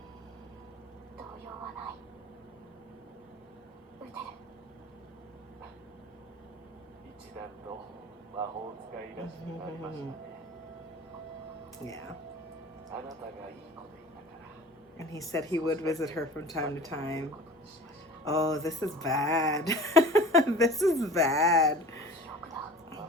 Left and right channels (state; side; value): normal; both; correlation 0.40